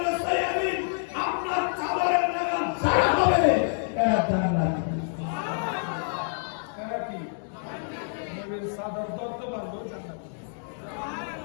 সায়াবি আপনার চাদরের লাগাম যারা হবে এরা জান্নাত এরা কি নবীর সাদর ধরতে পারলো জান্নাত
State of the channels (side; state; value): right; silent; digital silence